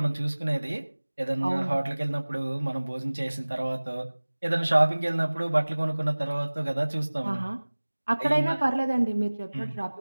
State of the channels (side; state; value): both; inverted; correlation -1.00